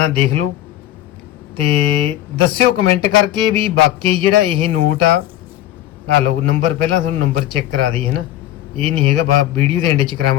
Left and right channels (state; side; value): quieter; right; 13.2 dB